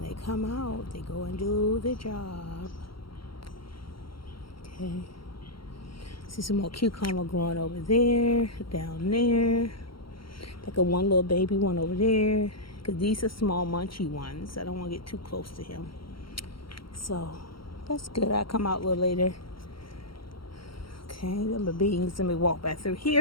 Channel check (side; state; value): right; late; 0.74 ms